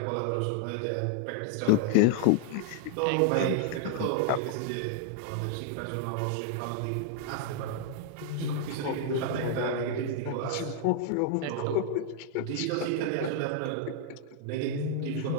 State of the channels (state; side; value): different; both; correlation -0.01